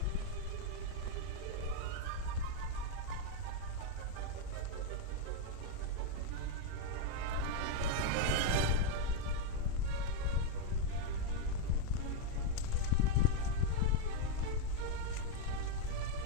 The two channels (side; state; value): both; different; correlation 0.01